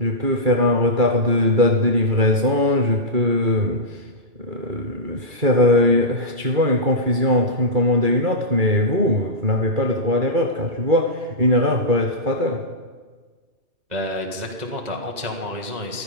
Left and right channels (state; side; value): late; left; 2.3 ms